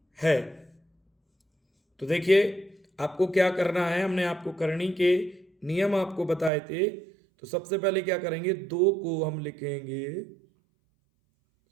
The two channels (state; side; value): drops out; left; at 6.5 s